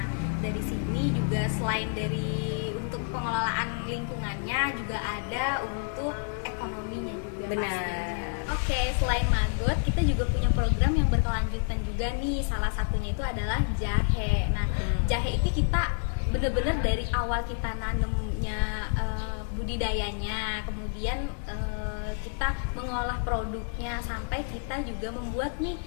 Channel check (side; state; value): right; silent; 59 dB below the other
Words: dari sini juga selain dari untuk pengelolaan lingkungannya, juga ada untuk ekonominya juga. Benar. Oke, selain maggot, kita juga punya program yang berkelanjutan juga nih. Salah satunya itu adalah jahe. Nah, jahe itu kita bener-bener dari awal kita nanemnya, budidayanya, kemudian kita mengolah produknya, sampai kita juga membuat nih